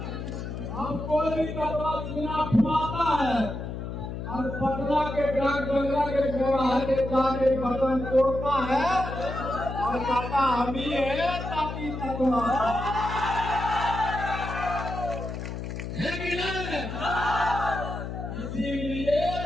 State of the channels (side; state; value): left; noise; hum, 6 dB below the sound